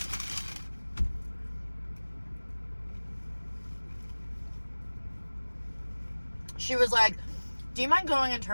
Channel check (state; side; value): inverted; both; correlation -1.00